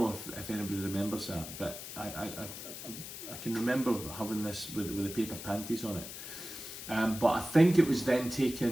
if anybody remembers that, but I can remember having this with the paper panties on it. But I think it was then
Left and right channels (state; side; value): noise; left; hiss, 10 dB below the sound